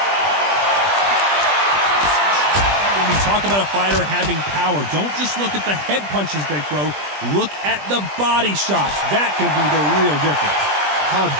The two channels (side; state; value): left; late; 20 ms